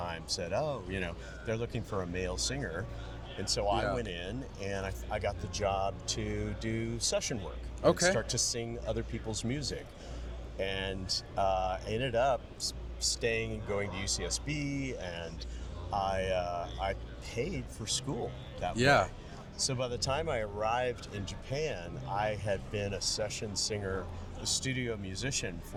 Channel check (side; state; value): both; identical; correlation 1.00